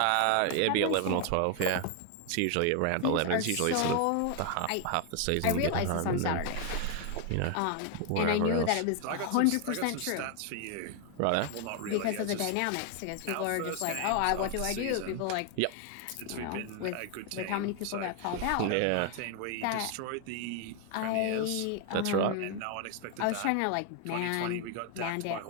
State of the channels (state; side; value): different; both; correlation 0.00